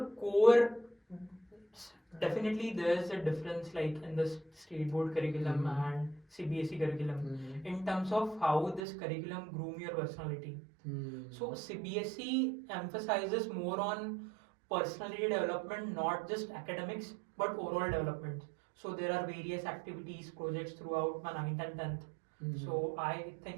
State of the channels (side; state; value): left; drops out; at 8.8 s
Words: core, definitely there's a difference like in the state board curriculum and CBSE curriculum in terms of how this curriculum groom your personality. So CBSE emphasizes more on personality development, not just academics but overall development. So there are various activities, projects throughout my 9th and 10th. So I